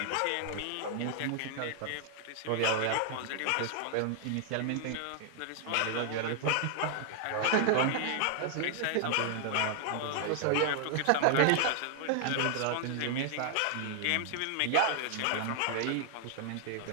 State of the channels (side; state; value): both; different; correlation 0.00